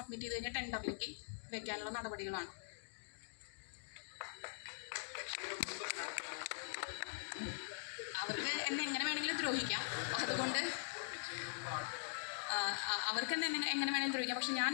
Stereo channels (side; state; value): right; silent; digital silence